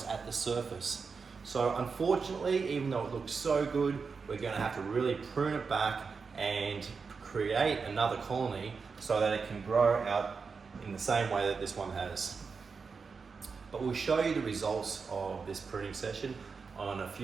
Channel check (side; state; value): left; quieter; 5.1 dB